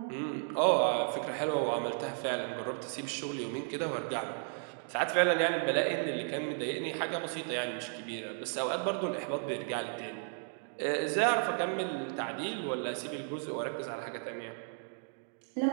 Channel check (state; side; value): silent; left; 55 dB below the other